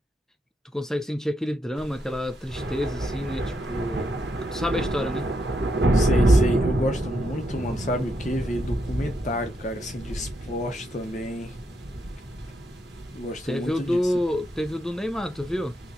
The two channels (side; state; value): both; normal; correlation 0.80